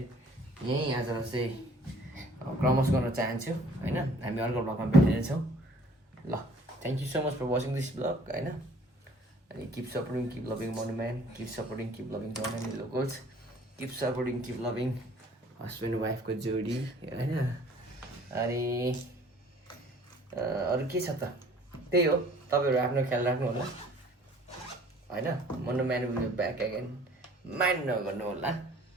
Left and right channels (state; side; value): normal; both; correlation 0.54